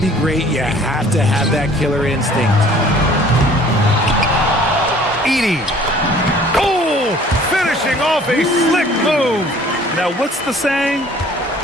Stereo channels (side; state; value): both; normal; correlation 0.53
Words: be great, you have to have that killer instinct. Edey. Oh, finishing off a slick move. Now, what's the saying?